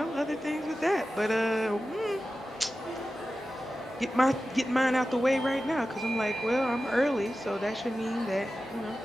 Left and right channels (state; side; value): normal; both; correlation 0.94